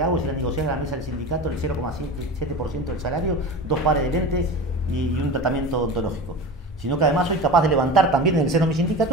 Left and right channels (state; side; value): normal; both; correlation 0.30